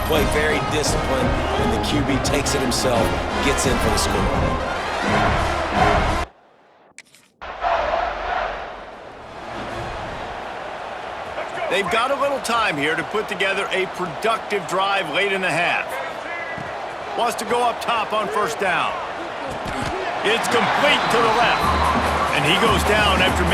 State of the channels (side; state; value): both; identical; correlation 1.00